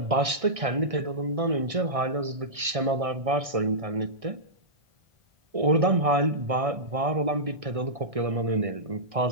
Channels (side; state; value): left; late; 1.6 ms